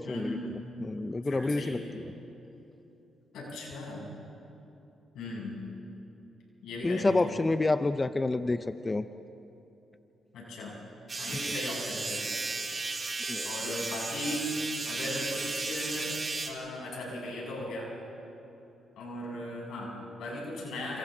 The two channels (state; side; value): normal; both; correlation 0.89